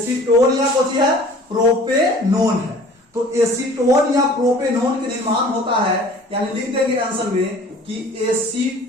या कोची है प्रोपेनोन है। तो एसीटोन या प्रोपेनोन के निर्माण होता है, यानी लिख देंगे आंसर में कि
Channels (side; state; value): both; normal; correlation 0.48